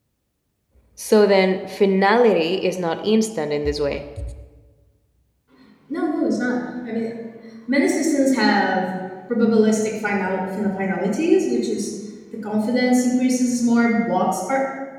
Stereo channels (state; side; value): identical; both; correlation 1.00